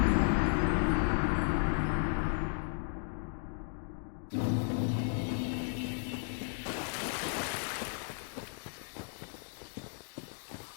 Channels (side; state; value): right; silent; 55 dB below the other